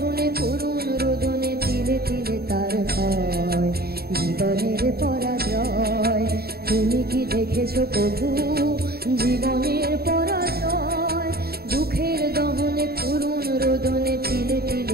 করুণ রোদনে তিলে তিলে তার ক্ষয়, জীবনের পরাজয়। তুমি কি দেখেছো কভু জীবনের পরাজয়? দুঃখের দহনে করুণ রোদনে তিলে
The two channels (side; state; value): left; late; 0.45 ms